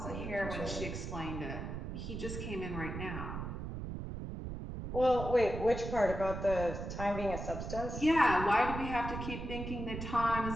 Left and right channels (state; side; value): noise; right; rumble, 6 dB below the sound